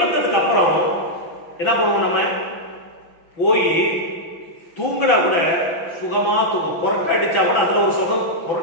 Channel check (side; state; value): right; late; 6.0 ms